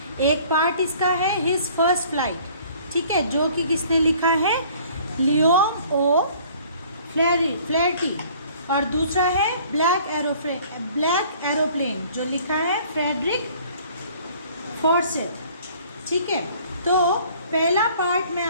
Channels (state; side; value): inverted; both; correlation -0.54